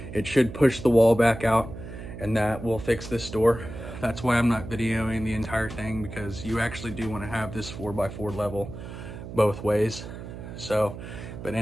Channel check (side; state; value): right; noise; hum, 11 dB below the sound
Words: it should push the wall back out, and that will fix this door. That's why I'm not videoing the entire thing, because you actually do want to have this 4x4 level both ways. So, but